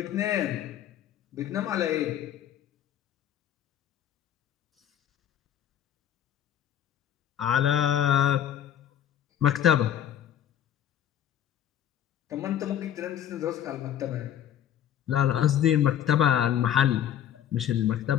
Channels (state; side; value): quieter; right; 10.4 dB